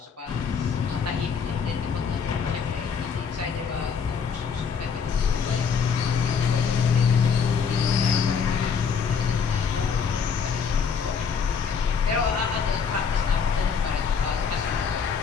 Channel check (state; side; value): quieter; right; 6.2 dB